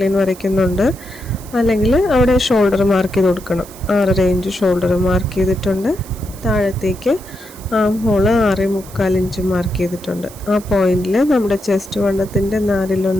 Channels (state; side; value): noise; right; hiss, 19 dB below the sound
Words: ലൈൻ വരയ്ക്കുന്നുണ്ട്. അല്ലെങ്കിൽ അവിടെ ഷോൾഡർ മാർക്ക് ചെയ്ത് കൊടുക്കണം. 6.5 ഇഞ്ച് ഷോൾഡർ മാർക്ക് ചെയ്തിട്ടുണ്ട്. താഴത്തേക്ക് ആം ഹോള് 6.25 ഇഞ്ച് മാർക്ക് ചെയ്തിട്ടുണ്ട്. ആ പോയിന്റിൽ നമ്മുടെ ചെസ്റ്റ് വണ്ണത്തിൻ്റെ